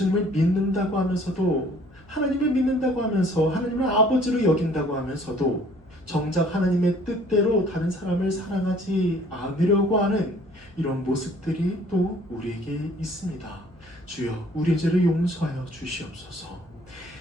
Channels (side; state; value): left; noise; hum, 27 dB below the sound